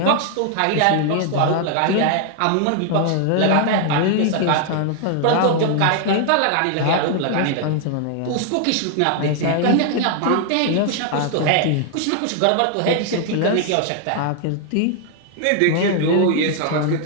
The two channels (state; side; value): different; both; correlation 0.00